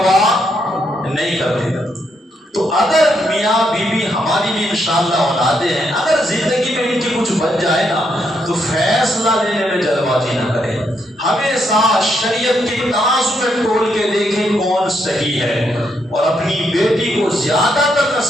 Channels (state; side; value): normal; both; correlation 0.78